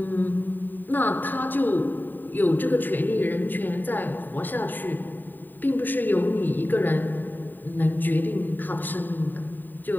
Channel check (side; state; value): right; late; 0.090 ms